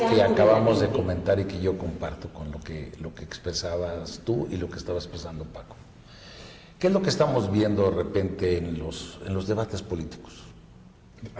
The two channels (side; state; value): both; identical; correlation 1.00